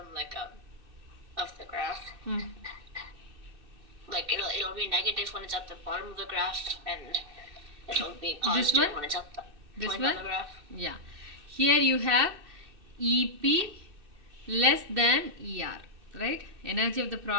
of the graph, like it'll be negative when it's at the bottom of the graph, and it'll be positive when it's at the point of the graph. Yeah. Here you have EP less than ER, right? Energy of the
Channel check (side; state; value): left; late; 2.6 ms